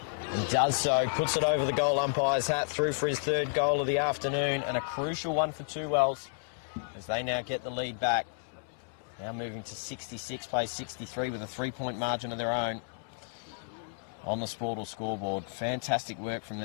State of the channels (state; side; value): silent; right; 57 dB below the other